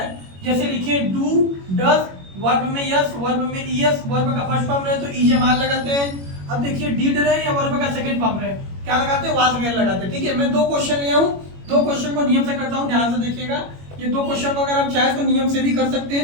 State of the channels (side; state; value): left; late; 21 ms